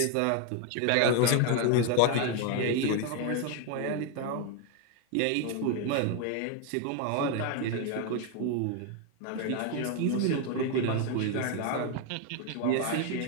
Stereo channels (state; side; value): different; both; correlation 0.01